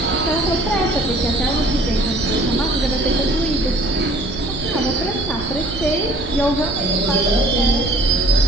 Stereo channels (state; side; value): noise; right; rumble, 11 dB below the sound